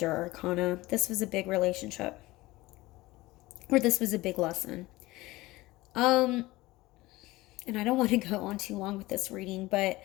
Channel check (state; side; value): quieter; right; 19.4 dB